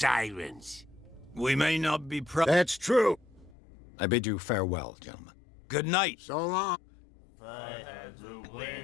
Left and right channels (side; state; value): right; drops out; at 3.6 s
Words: We may not be That's true. I bid you farewell, gentlemen. Good night. So long. I had the